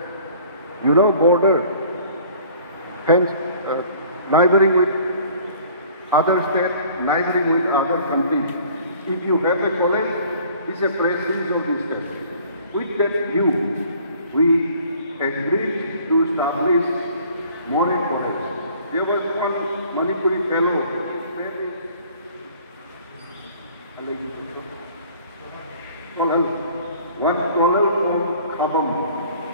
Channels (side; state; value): both; inverted; correlation -0.52